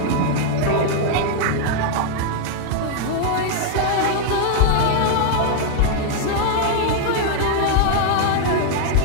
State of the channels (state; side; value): different; both; correlation 0.00